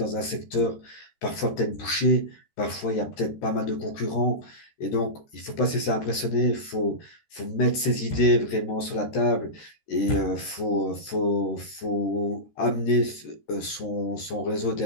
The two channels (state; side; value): late; right; 13 ms